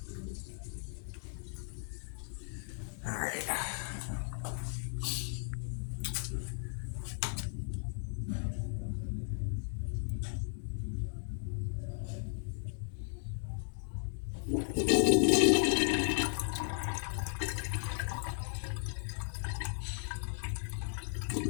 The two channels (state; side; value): silent; right; digital silence